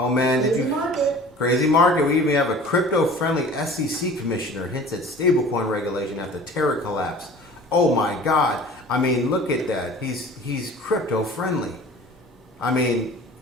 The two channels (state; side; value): normal; both; correlation 0.44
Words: man, did Crazy you market. crazy market? We even have a crypto-friendly SEC commissioner hints at stablecoin regulation after Terra collapse. Oh my God! I mean, look at that. He's crypto-friendly. I mean,